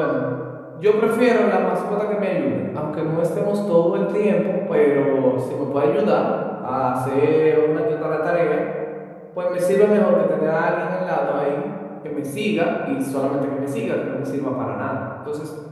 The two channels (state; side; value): identical; both; correlation 1.00